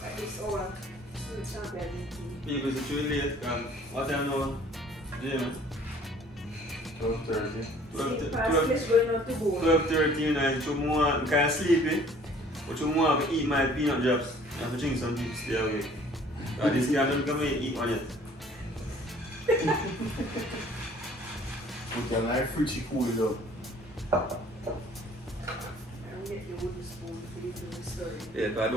It's all. It's not bad. Because it's too late. What time now? Jim? 12:30. Past this going out to go. 12:30 and I'm kind of sleepy. But you want to eat my peanut drops. I have to drink some tea to stay awake. This guy don't come and eat one yet. We can like fruity cool it up. I'll get the wooden spoon for this little story. Yeah, but I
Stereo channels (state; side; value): normal; both; correlation 0.54